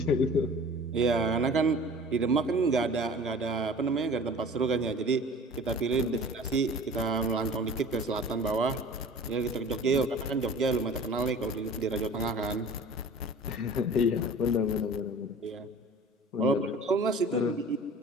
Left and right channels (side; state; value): both; normal; correlation 0.43